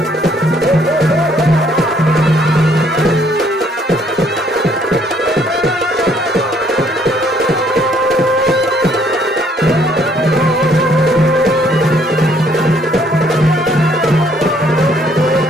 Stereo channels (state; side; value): normal; both; correlation 0.65